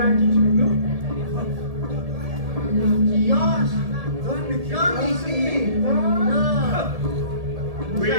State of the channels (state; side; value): late; left; 1.7 ms